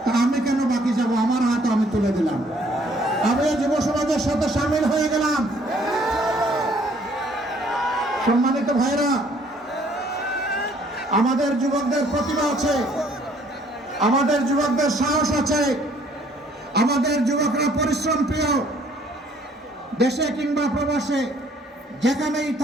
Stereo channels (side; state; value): both; normal; correlation 0.61